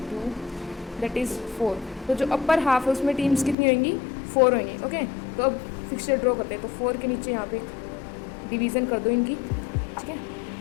that is 4. तो जो अपर हाफ है उसमें टीम्स कितनी होंगी 4 होंगी. ओके. तो अब फिक्सचर ड्रॉ करते हैं. तो 4 के नीचे यहाँ पे डिवीज़न कर दो इनकी, ठीक है.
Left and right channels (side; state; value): right; drops out; at 3.6 s